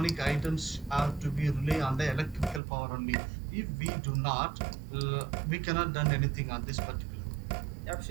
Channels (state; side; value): drops out; left; at 2.6 s